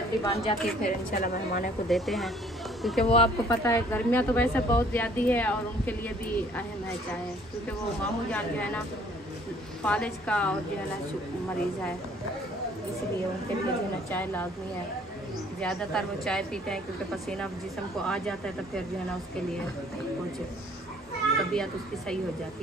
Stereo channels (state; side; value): normal; both; correlation 0.58